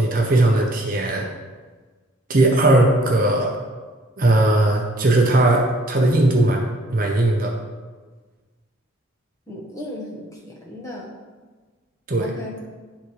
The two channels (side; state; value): both; normal; correlation 0.61